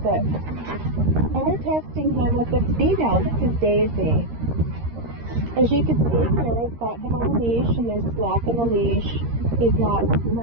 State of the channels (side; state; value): left; late; 13 ms